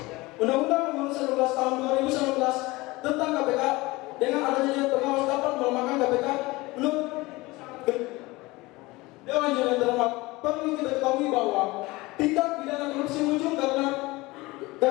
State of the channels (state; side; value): quieter; right; 21.6 dB